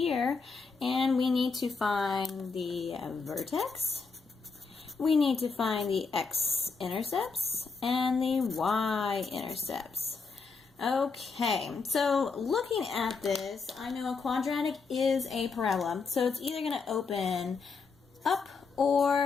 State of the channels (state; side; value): quieter; right; 4.7 dB